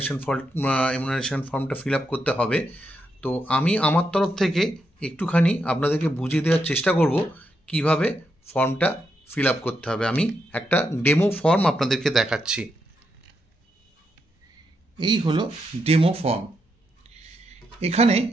এমুনারেশন ফর্মটা ফিল আপ করতে হবে। তো আমি আমার তরফ থেকে একটুখানি আপনাদেরকে বুঝিয়ে দেওয়ার চেষ্টা করব কিভাবে ফর্মটা ফিল আপ করতে হবে। আমি একটা ডেমো ফর্ম আপনাদেরকে দেখাচ্ছি। এই হলো ডেমো ফর্ম। এখানে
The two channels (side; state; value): both; normal; correlation 0.82